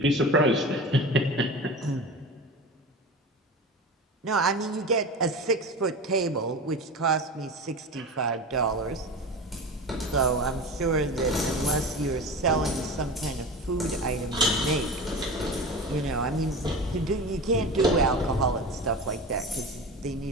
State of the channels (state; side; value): normal; both; correlation 0.30